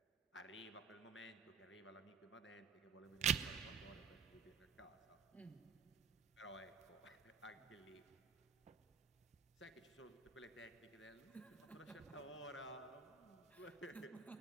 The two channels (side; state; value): left; quieter; 6.4 dB